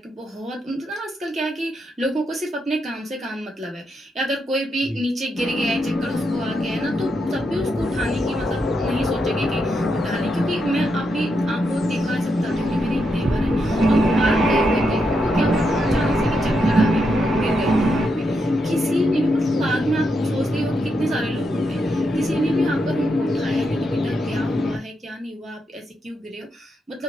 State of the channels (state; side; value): normal; both; correlation 0.82